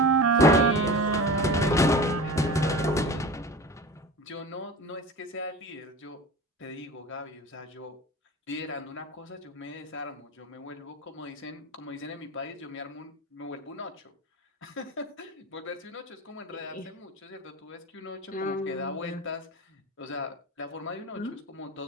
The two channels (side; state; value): both; normal; correlation 0.32